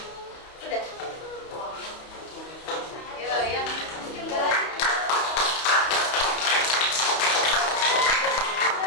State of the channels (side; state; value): right; late; 31 ms